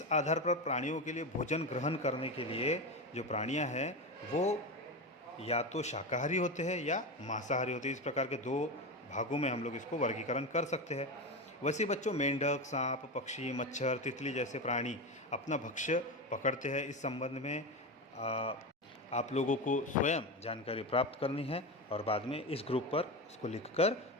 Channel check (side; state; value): both; normal; correlation 0.20